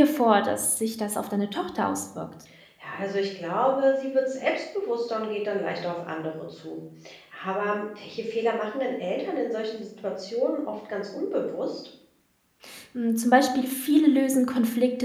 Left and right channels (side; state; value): both; identical; correlation 1.00